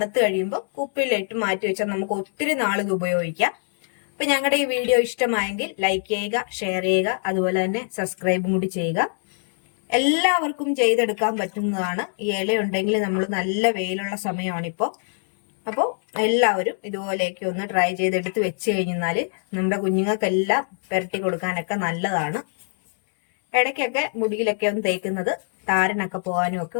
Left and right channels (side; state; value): right; silent; digital silence